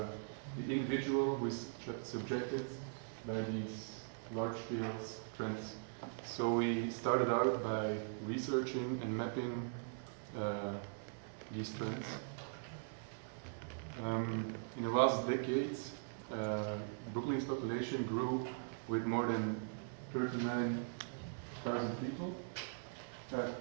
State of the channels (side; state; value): left; silent; digital silence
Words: individual who is subjected by these large-scale trends. So we started out by researching and mapping these trends. In the last decades, Brooklyn's population grew with more than 39,000 people.